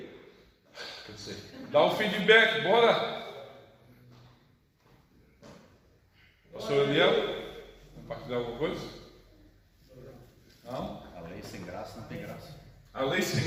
Dá um feedback, bora! Pastor Eliel, compartilhar alguma coisa? Não? A lei sem graça não tem graça. A lei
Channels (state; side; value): identical; both; correlation 1.00